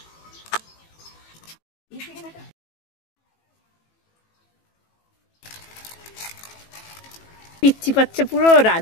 পিচ্ছি পাচ্ছে, পুরো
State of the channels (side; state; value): right; late; 18 ms